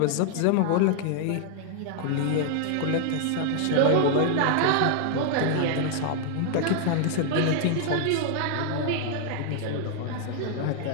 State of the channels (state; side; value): different; both; correlation 0.00